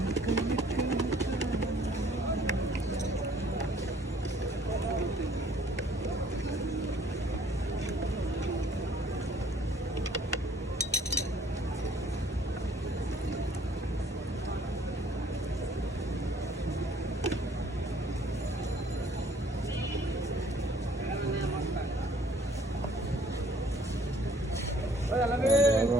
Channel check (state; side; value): normal; both; correlation 0.58